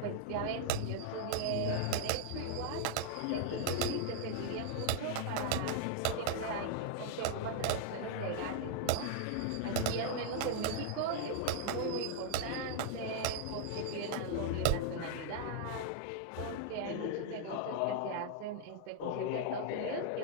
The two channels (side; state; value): both; different; correlation -0.01